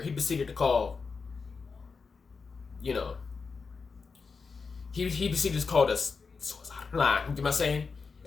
he proceeded to call, he proceeded to call the suicide line, you get what I'm saying?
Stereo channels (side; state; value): right; quieter; 4.9 dB